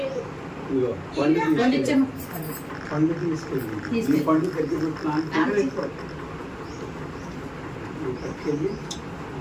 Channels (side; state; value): both; identical; correlation 1.00